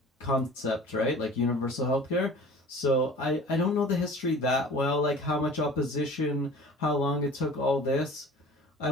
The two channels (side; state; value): both; normal; correlation 0.43